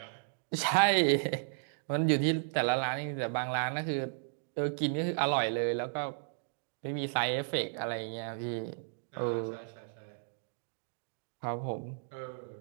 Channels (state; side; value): silent; left; digital silence